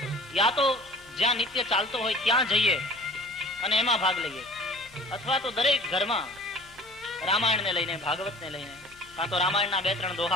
યા તો જ્યાં નિત્ય ચાલતો હોય ત્યાં જઈએ અને એમાં ભાગ લઈએ, અથવા તો દરેક ઘરમાં રામાયણને લઈને, ભાગવતને લઈને, કાં તો રામાયણના 2-3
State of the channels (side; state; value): both; normal; correlation 0.46